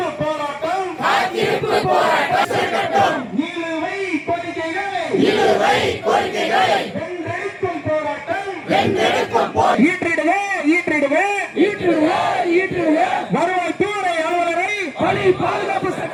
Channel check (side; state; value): both; identical; correlation 1.00